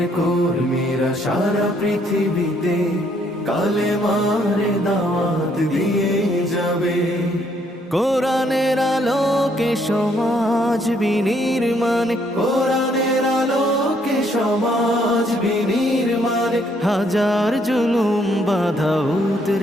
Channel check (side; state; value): both; normal; correlation 0.69